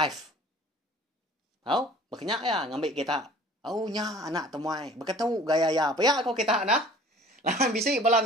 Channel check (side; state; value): both; normal; correlation 0.48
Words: Tahu? Berkenyak ya ngambil kita. Oh nya anak temuai. Berkatu gaya ya. Paya kau kita nah. Lahan bisik balam